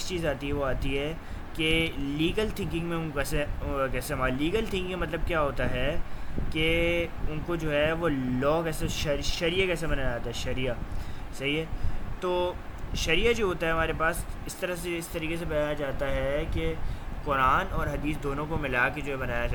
چیز آتی ہے وہ آتی ہے کہ لیگل تھنکنگ میں ان کیسے ہمارا لیگل تھنکنگ مطلب کیا ہوتا ہے کہ ان کو جو ہے وہ لا کیسے شریعہ کیسے بنایا جاتا ہے، شریعہ، صحیح ہے، تو شریعہ جو ہوتا ہے ہمارے پاس اس طریقے سے بنایا جاتا ہے کہ قرآن اور حدیث دونوں کو ملا کے جو ہے بنایا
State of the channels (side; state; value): both; identical; correlation 1.00